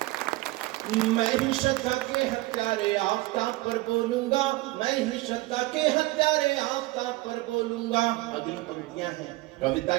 मैं ही श्रद्धा के हत्यारे आफताब पर बोलूंगा, मैं ही श्रद्धा के हत्यारे आफताब पर बोलूंगा। अगली पंक्तियां हैं, कविता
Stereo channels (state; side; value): quieter; left; 19.7 dB